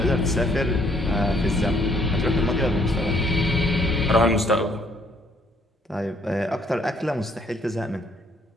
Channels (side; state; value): both; normal; correlation 0.66